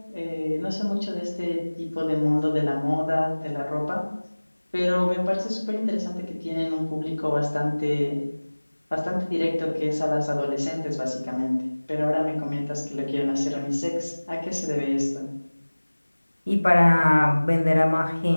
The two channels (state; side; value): inverted; both; correlation -1.00